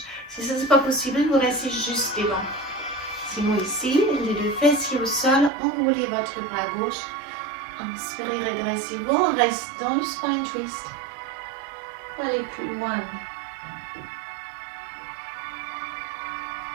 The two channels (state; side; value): drops out; left; at 5.5 s